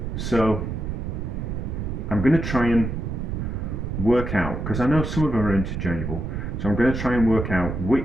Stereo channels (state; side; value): noise; right; rumble, 4 dB below the sound